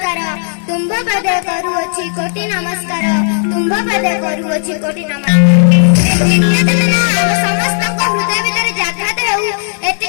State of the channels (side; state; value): right; silent; digital silence